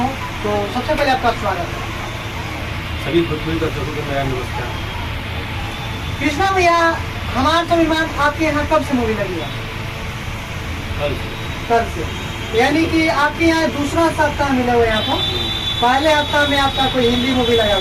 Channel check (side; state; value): both; identical; correlation 1.00